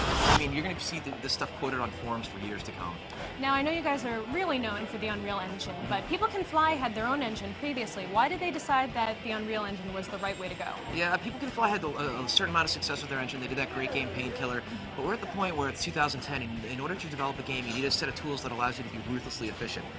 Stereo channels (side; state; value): both; identical; correlation 1.00